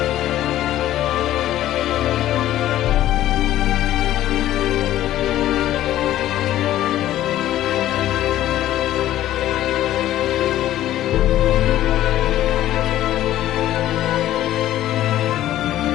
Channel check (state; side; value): quieter; right; 13.4 dB